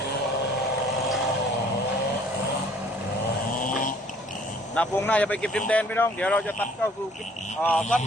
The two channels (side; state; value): both; normal; correlation 0.57